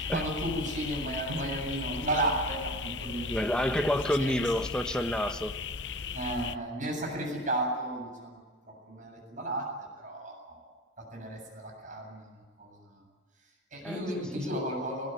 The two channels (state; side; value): normal; both; correlation 0.37